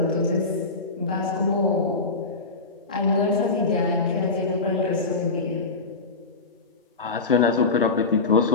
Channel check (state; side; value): quieter; right; 3.9 dB